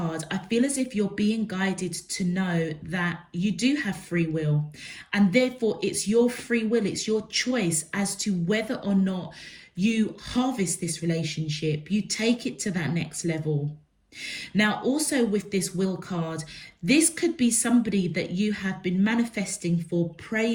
I feel as if you're being guided to know that you do have free will, and therefore it's your free will, it's your choice as to whether or not you harvest this relationship, you take it to that next level. Now, also with this will card, this could be somebody that you have been manifesting for,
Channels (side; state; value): both; identical; correlation 1.00